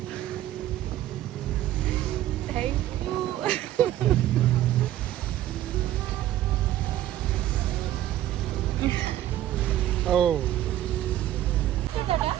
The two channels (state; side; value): quieter; left; 13.3 dB